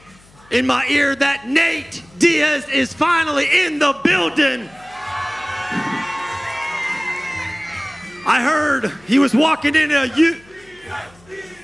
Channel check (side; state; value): left; noise; hum, 28 dB below the sound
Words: in my ear that Nate Diaz is finally in the building. I heard he was walking in